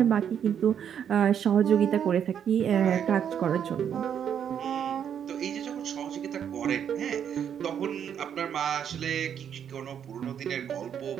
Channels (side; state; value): left; quieter; 8.6 dB